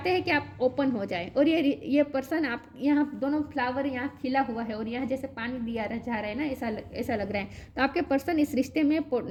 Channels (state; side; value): identical; both; correlation 1.00